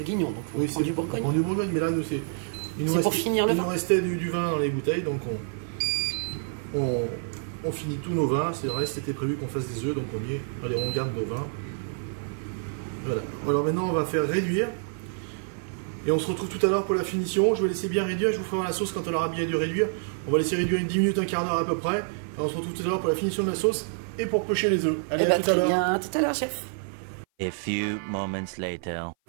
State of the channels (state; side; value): silent; left; 56 dB below the other